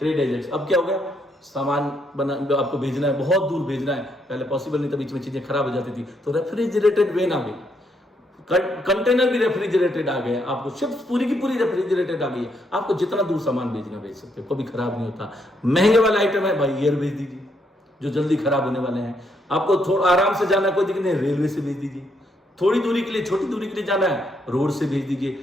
agents। अब क्या हो गया, सामान बना आपको भेजना है, बहुत दूर भेजना है, पहले पॉसिबल नहीं था, बीच में चीजें खराब हो जाती थी, तो रेफ्रिजरेटेड वेन आ गई, कंटेनर भी रेफ्रिजरेटेड आ गए, आपको शिप्स पूरी की पूरी रेफ्रिजरेटेड आ गई है, आपको जितना दूर सामान भेजना भेज सकते हो, कभी खराब नहीं होता। महंगे वाला आइटम है भाई, एयर भेज दीजिए जो जल्दी खराब होने वाले हैं। आपको थोड़ा आराम से जाना है, कोई दिक्कत नहीं, रेलवे से भेज दीजिए। थोड़ी दूरी के लिए, छोटी दूरी के लिए जाना है, रोड से भेज दीजिए।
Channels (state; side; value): normal; both; correlation 0.74